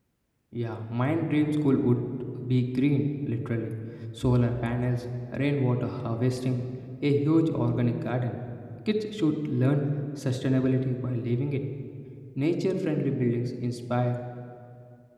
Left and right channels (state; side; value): identical; both; correlation 1.00